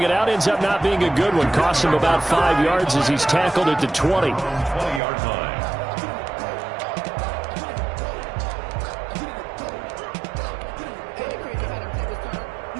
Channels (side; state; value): left; drops out; at 5.0 s